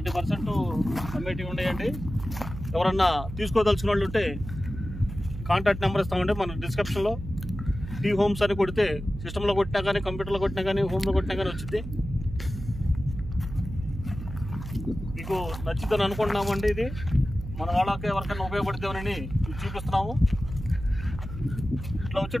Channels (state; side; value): noise; right; hum, 10 dB below the sound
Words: అమ్మేటివి ఉన్నాయండి. ఎవరన్నా తీసుకోదలుచుకున్న వాళ్ళు ఉంటే కాంటాక్ట్ నెంబర్ ఇస్తామండి మన డిస్క్రిప్షన్లో. టీ హోమ్స్ అని కొడితే సిస్టంలో కొట్టినా కానీ కంప్యూటర్లో కొట్టినా కానీ హోమ్లో కొట్టినా కానీ వచ్చింది. మీకు నచ్చిందని అనుకుంటున్నామండి. ఇది మన వాళ్ళకి ఎవరికైనా ఉపయోగపడుతుందని చూపిస్తున్నాము. ఇట్లా వచ్చే